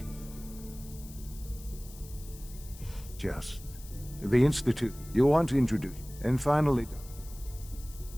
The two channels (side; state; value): left; noise; hiss, 18 dB below the sound